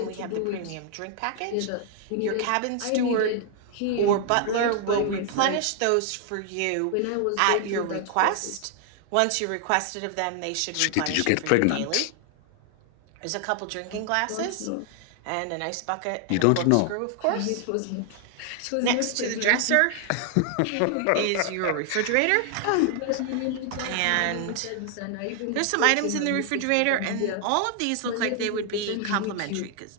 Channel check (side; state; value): both; different; correlation 0.00